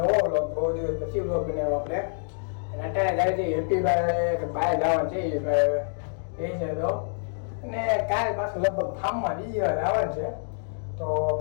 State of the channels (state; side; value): silent; right; digital silence